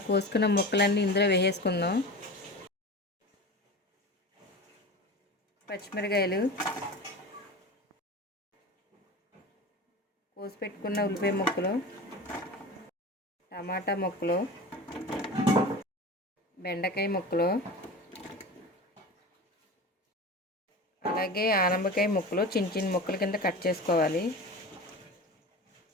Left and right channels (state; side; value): normal; both; correlation 0.32